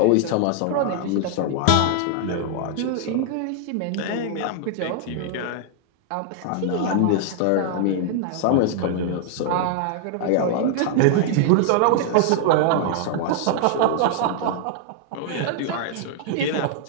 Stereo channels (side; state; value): both; different; correlation 0.00